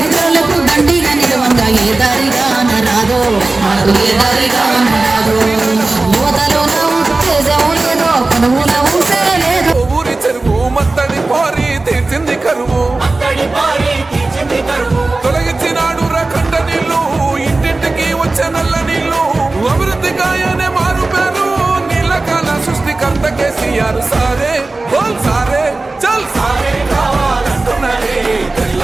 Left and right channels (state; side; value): quieter; left; 3.3 dB